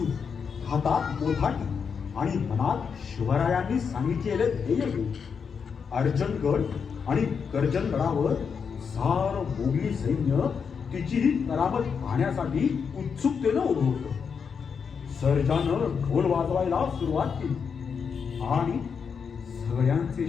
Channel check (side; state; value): right; quieter; 6.3 dB